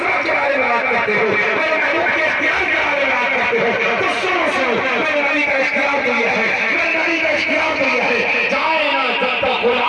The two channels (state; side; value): identical; both; correlation 1.00